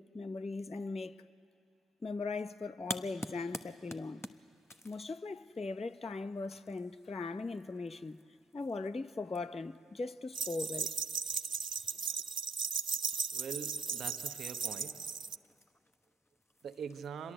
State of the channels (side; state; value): both; normal; correlation 0.66